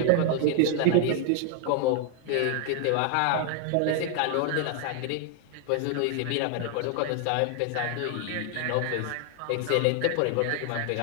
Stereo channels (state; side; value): different; both; correlation 0.00